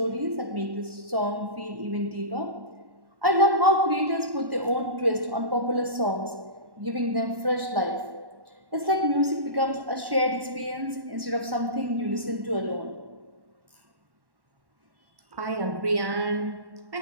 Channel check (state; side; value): late; left; 1.1 ms